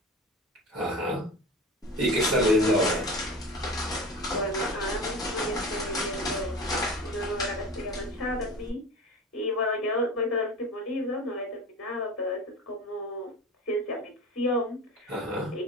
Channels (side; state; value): both; normal; correlation 0.33